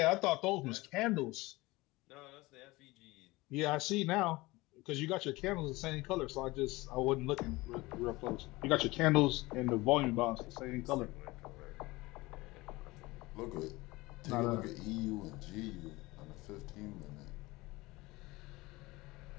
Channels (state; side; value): quieter; right; 21.2 dB